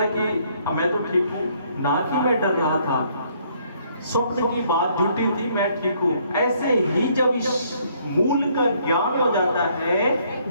है कि मैं तो ठीक हूँ, ना कि मैं डर रहा था, स्वप्न की बात झूठी थी, मैं ठीक हूँ। ऐसे ही जब इस मूल का ज्ञान हो जाता है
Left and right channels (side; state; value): both; inverted; correlation -0.66